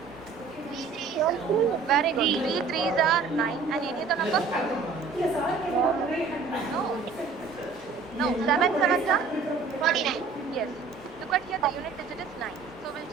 3 3s. Very good. 3 threes are 9. And any other number? No. 7 sevens are? 49. Yes. Look at here, the unit digit is 9. So we'll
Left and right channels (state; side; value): quieter; left; 4.9 dB